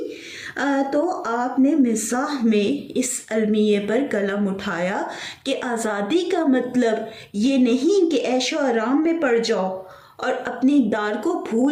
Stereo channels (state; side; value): identical; both; correlation 1.00